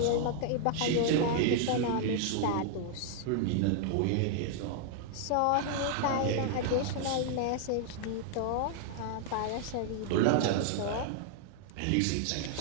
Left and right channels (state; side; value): different; both; correlation 0.00